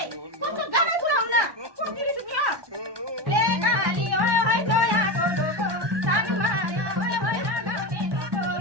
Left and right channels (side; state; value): left; late; 1.2 ms